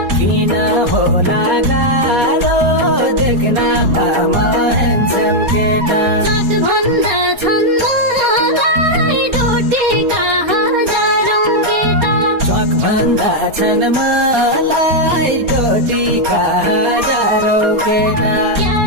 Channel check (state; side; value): late; left; 4.2 ms